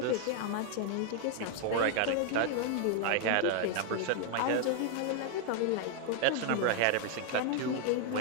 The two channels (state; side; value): different; both; correlation 0.00